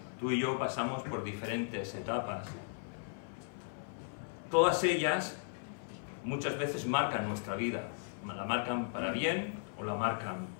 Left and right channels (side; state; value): right; silent; 53 dB below the other